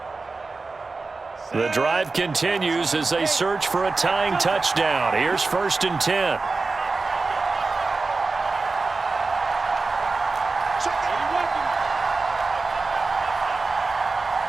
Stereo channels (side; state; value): left; quieter; 3.9 dB